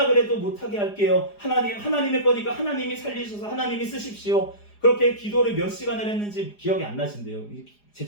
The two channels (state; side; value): late; right; 4.9 ms